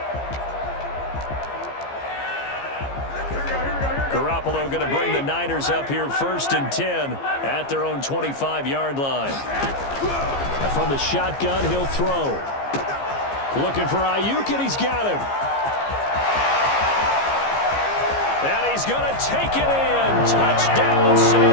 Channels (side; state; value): right; late; 15 ms